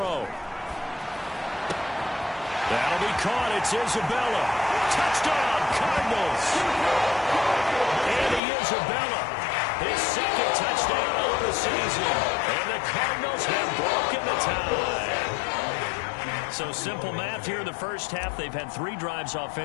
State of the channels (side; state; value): right; drops out; at 8.4 s